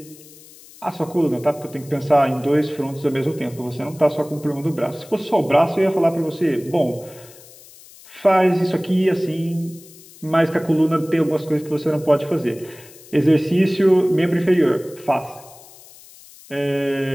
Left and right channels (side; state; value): left; noise; hiss, 22 dB below the sound